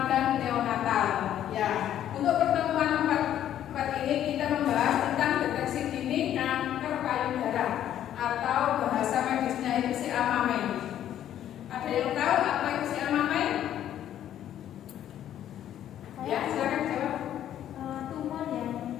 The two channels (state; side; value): quieter; right; 11.1 dB